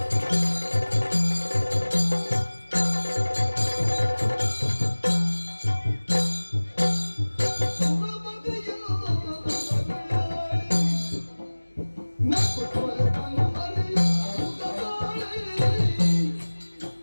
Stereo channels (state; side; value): inverted; both; correlation -1.00